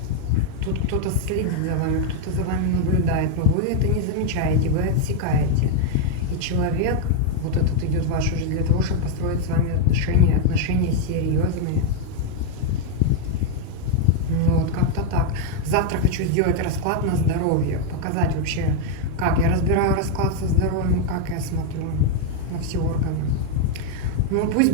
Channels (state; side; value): different; both; correlation 0.01